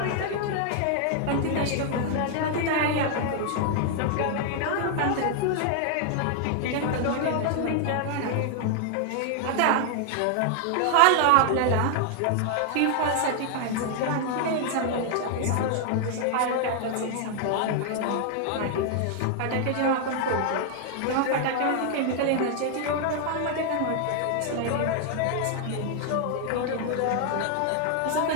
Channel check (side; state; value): both; different; correlation 0.00